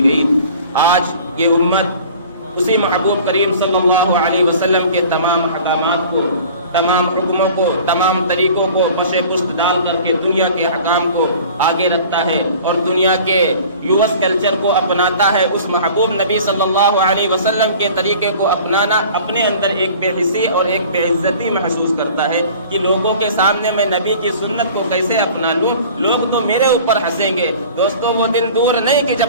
گئی۔ آج یہ امت اسی محبوب کریم صلی اللہ علیہ وسلم کے تمام احکامات کو، تمام حکموں کو، تمام طریقوں کو پش پشت ڈال کر کے دنیا کے حکام کو آگے رکھتا ہے اور دنیا کے یوس کلچر کو اپناتا ہے۔ اس محبوب نبی صلی اللہ علیہ وسلم کے طریقے کو اپنانا اپنے اندر ایک بے حسی اور ایک بے عزتی محسوس کرتا ہے کہ لوگوں کے سامنے میں نبی کی سنت کو کیسے اپنا لوں، لوگ تو میرے اوپر ہنسیں گے۔ دوستو وہ دن دور نہیں کہ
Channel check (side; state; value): both; inverted; correlation -0.45